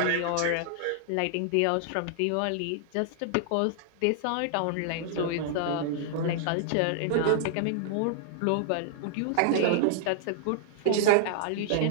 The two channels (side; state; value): both; different; correlation -0.01